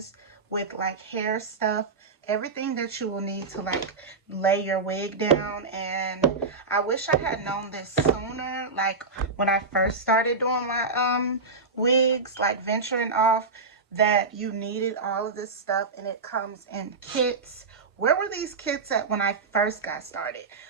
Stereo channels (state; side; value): quieter; left; 4.1 dB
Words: with like hair stuff, everything that you will need to like lay your wig down. And I wish I had known this sooner, like when I first started doing my wigs, like venturing off, that you needed all of this stuff, and it comes in kits. Where were these kits at when I first got started?